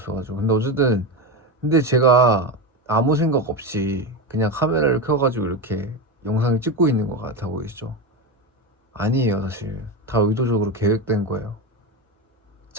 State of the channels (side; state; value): both; normal; correlation 0.17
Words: 근데 어쨌든 근데 제가 아무 생각 없이 그냥 카메라를 켜가지고 이렇게 영상을 찍고 있는 것 같아 보이시죠? 아니에요. 사실 다 의도적으로 계획된 거예요.